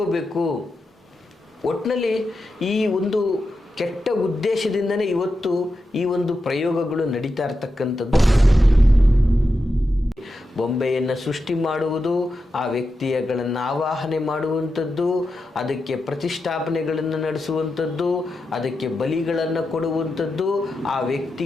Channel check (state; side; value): normal; both; correlation 0.89